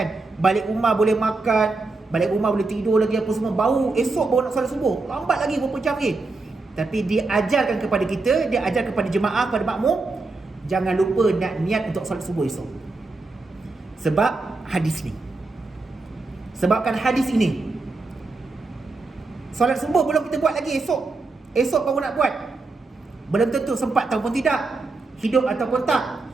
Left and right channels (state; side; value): quieter; left; 3.6 dB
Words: Balik rumah boleh makan, balik rumah boleh tidur lagi apa semua, baru esok baru nak solat subuh, lambat lagi berapa jam lagi. Tapi dia ajarkan kepada kita, dia ajar kepada jemaah, kepada makmum, jangan lupa nak niat untuk solat subuh esok. Sebab hadis ni, sebabkan hadis ini, solat subuh belum kita buat lagi, esok baru nak buat. Belum tentu sempat ataupun tidak, hidup ataupun tak.